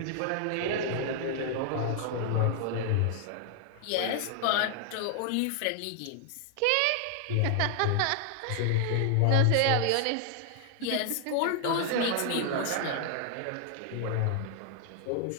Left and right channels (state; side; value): different; both; correlation 0.00